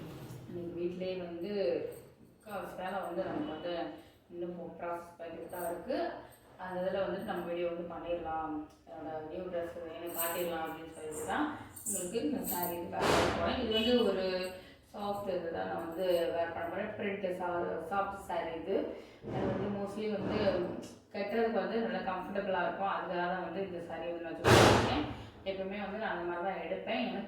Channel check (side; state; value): both; identical; correlation 1.00